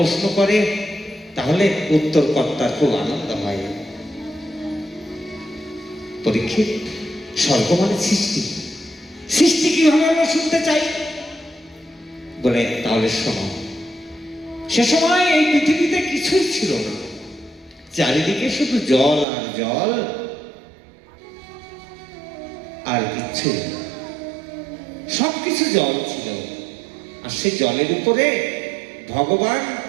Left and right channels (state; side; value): drops out; left; at 19.2 s